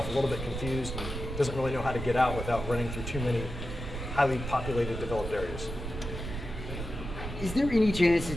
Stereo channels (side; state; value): right; noise; rumble, 7 dB below the sound